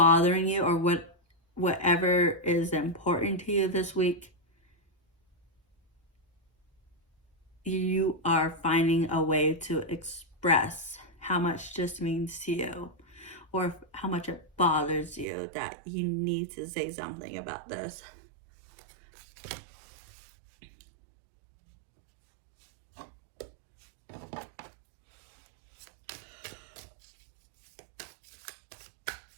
you or whatever is important to you this week. You are finding a way to express how much this means to you, or how much it bothers you that you need to say something about this.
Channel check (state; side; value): drops out; left; at 15.2 s